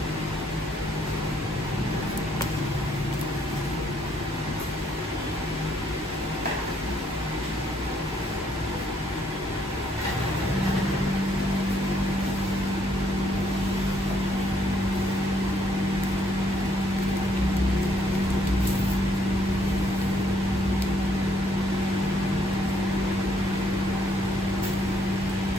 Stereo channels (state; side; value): normal; both; correlation 0.70